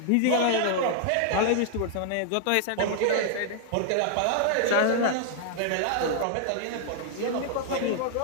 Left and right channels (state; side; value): different; both; correlation 0.00